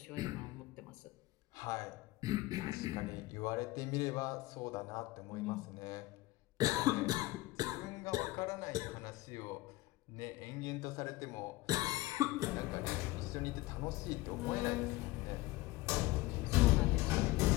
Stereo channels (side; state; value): right; quieter; 19.3 dB